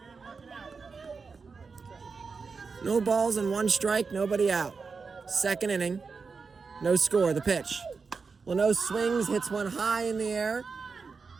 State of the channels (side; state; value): left; quieter; 4.9 dB